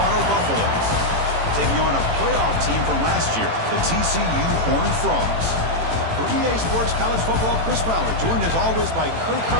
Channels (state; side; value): late; left; 18 ms